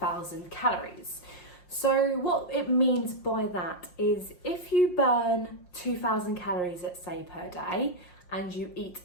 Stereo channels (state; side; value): late; right; 5.6 ms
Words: calories. So what it means by that is if you burn 2,000 calories, let's say, per day, and you eat